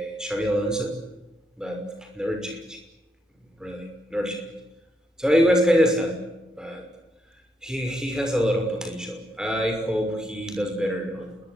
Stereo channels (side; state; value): both; normal; correlation 0.78